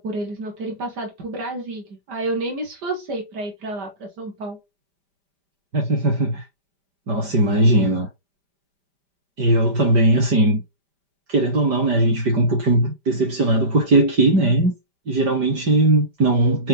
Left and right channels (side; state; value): left; late; 5.0 ms